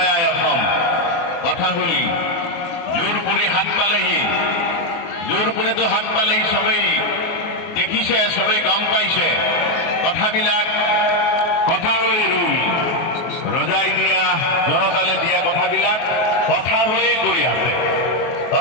অসম। কথা হ'ল জোৰ পুৰি হাত পালেহি, জোৰ পুৰিতো হাত পালেহি, চবেই দেখিছে, চবেই গম পাইছে কথাবিলাক। কথা হৈ ৰুল ৰজাই দিয়া, জনতালে দিয়া কথাবিলাক কথা হৈয়ে গৈ আছে,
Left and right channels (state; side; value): late; right; 24 ms